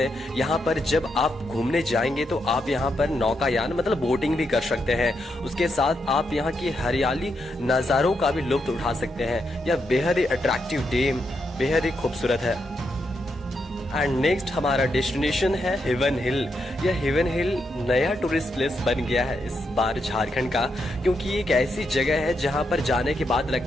यहाँ पर जब आप घूमने जाएंगे तो आप यहाँ पर नौकायान मतलब बोटिंग भी कर सकते हैं। उसके साथ आप यहाँ की हरियाली नज़ारों का भी लुत्फ उठा सकते हैं। यह बेहद ही अट्रैक्टिव डैम बेहद ही खूबसूरत है। एंड नेक्स्ट हमारा डेस्टिनेशन है हेवन हिल। यह हेवन हिल नया टूरिस्ट प्लेस बन गया है इस बार झारखंड का, क्योंकि एक ऐसी जगह है जहां पर जाने के बाद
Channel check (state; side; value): normal; both; correlation 0.82